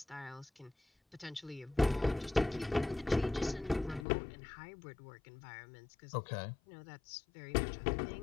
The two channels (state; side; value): drops out; right; at 4.0 s